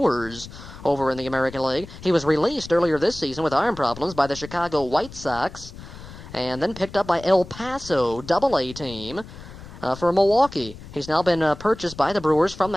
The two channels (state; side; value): noise; left; rumble, 15 dB below the sound